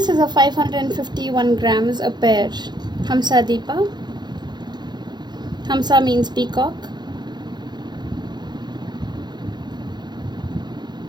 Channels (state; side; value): late; left; 0.21 ms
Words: is a 551 grams a pair. Hamsa Deepa. Hamsa means peacock.